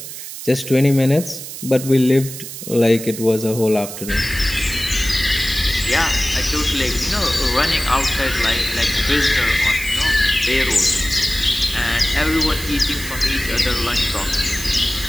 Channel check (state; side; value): noise; right; hiss, 10 dB below the sound